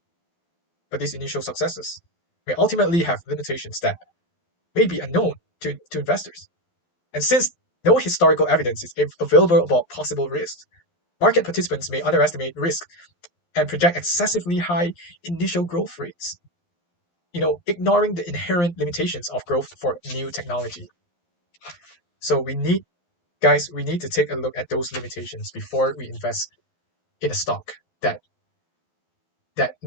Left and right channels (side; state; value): right; late; 11 ms